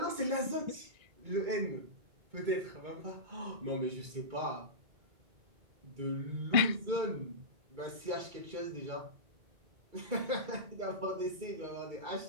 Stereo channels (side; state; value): left; late; 2.2 ms